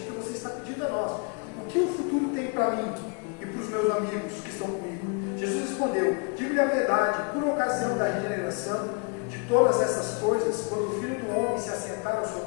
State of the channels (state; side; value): quieter; right; 34.1 dB